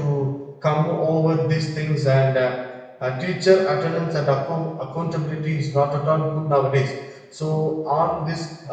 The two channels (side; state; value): both; identical; correlation 1.00